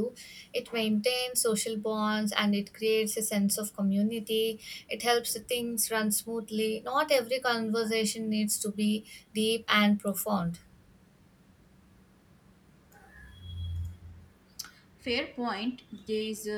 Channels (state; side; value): identical; both; correlation 1.00